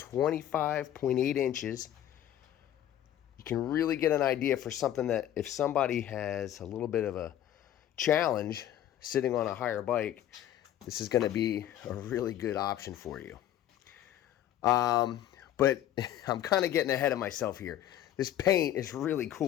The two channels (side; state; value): right; quieter; 11.8 dB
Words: inches. You can really get an idea for something that if somebody has a little bit of a challenge sitting on a higher bike, this is going to be a really good option for you. But I'm kind of getting ahead of myself here. This paint is really